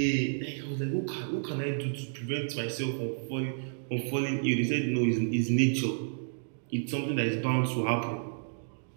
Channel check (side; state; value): left; silent; digital silence